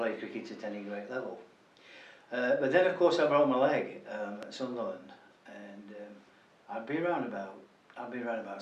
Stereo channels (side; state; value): both; identical; correlation 1.00